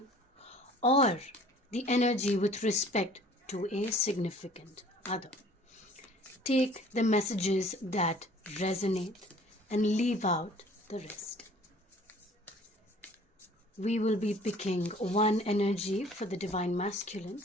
or the energy with respect to a significant other. Take the messages that resonate and leave out the rest. We will be picking one energy for the divine masculine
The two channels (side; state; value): both; normal; correlation 0.52